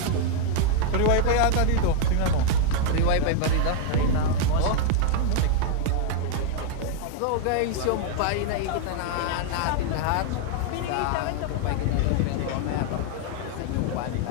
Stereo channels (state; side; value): different; both; correlation 0.00